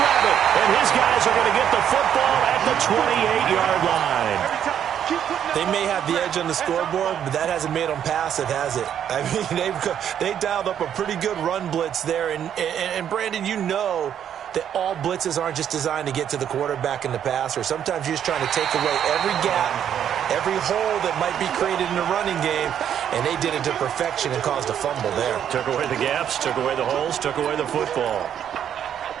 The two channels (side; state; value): left; quieter; 9.4 dB